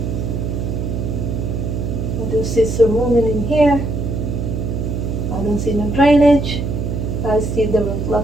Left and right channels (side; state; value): right; noise; hum, 2 dB below the sound